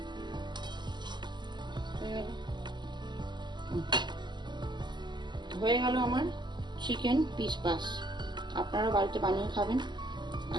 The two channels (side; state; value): left; late; 0.21 ms